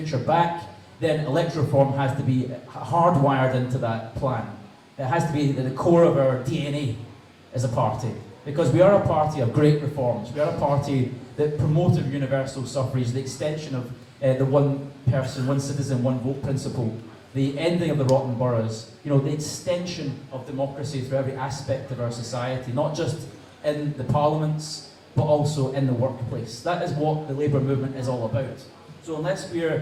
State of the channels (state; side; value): identical; both; correlation 1.00